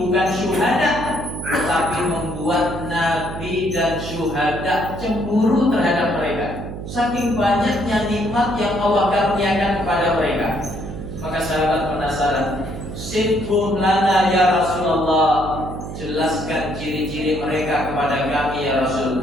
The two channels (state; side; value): noise; right; hum, 9 dB below the sound